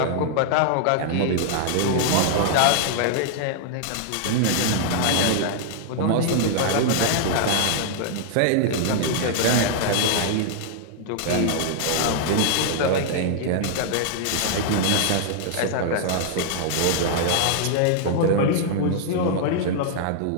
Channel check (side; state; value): both; different; correlation -0.01